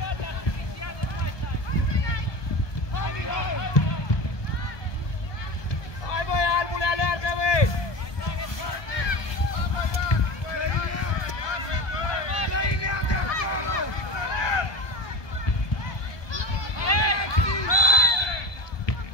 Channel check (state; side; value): late; right; 1.2 ms